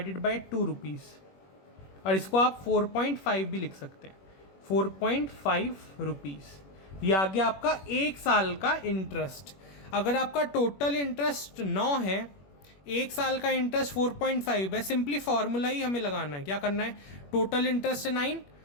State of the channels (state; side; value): late; right; 21 ms